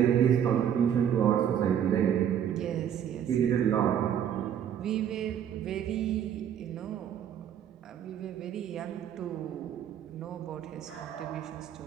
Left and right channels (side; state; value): left; quieter; 9.4 dB